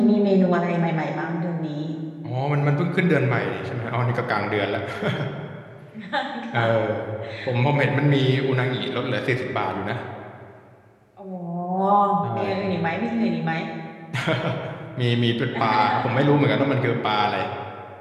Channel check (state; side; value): identical; both; correlation 1.00